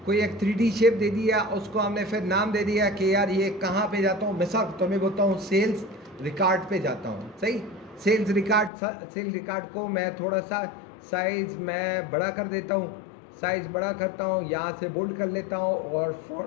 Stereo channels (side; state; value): right; drops out; at 8.7 s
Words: कोई एक 3D शेप दे दिया, उसको हमने फिर नाम दे दिया कि यार ये कहाँ पे जाता हूँ, मिसाल तो मैं बोलता हूँ सेल्स रिकॉर्ड पे जाता हूँ, सही, सेल्स रिकॉर्ड को मैं थोड़ा सा साइज़ मैं बड़ा कर देता हूँ, साइज़ बड़ा करता हूँ, यहाँ से बोल्ड कर लेता हूँ और